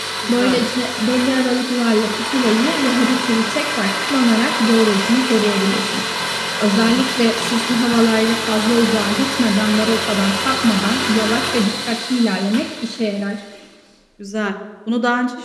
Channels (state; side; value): identical; both; correlation 1.00